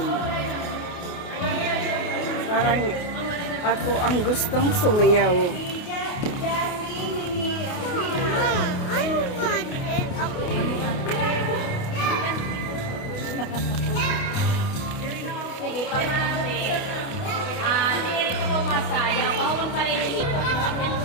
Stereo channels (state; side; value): late; right; 28 ms